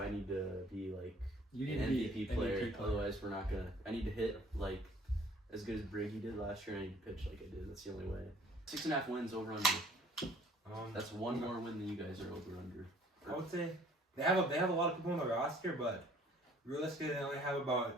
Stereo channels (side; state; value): both; normal; correlation 0.56